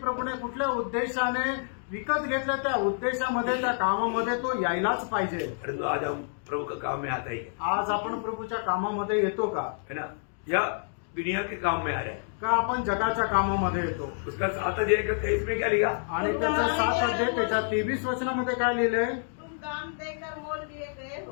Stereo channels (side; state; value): right; silent; digital silence